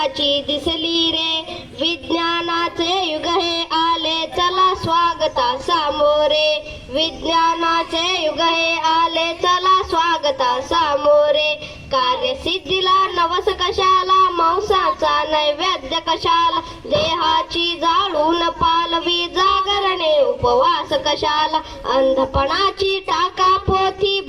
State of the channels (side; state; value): both; identical; correlation 1.00